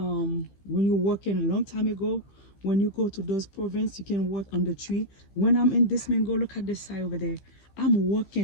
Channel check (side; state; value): right; late; 15 ms